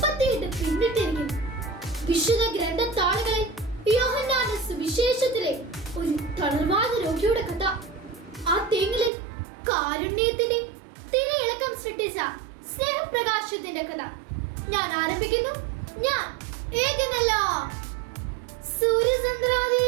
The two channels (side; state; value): left; drops out; at 9.1 s